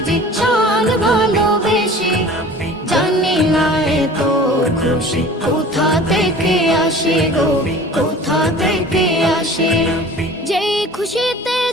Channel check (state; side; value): normal; both; correlation 0.43